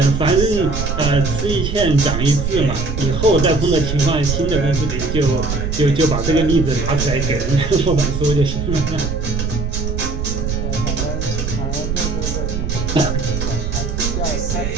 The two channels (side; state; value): right; noise; rumble, 2 dB below the sound